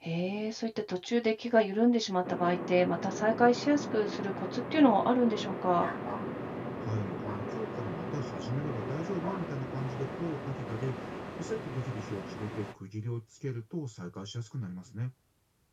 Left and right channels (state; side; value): identical; both; correlation 1.00